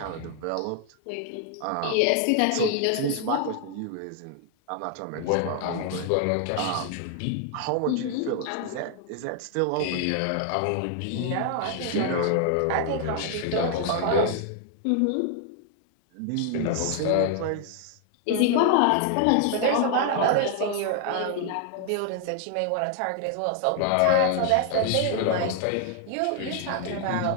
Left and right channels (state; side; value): different; both; correlation 0.00